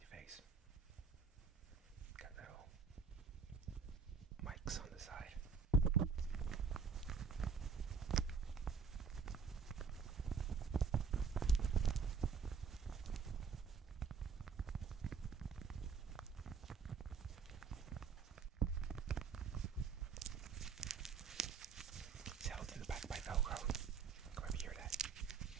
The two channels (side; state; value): left; quieter; 5.5 dB